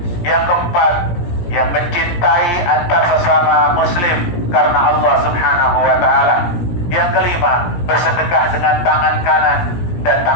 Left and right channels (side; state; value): right; late; 17 ms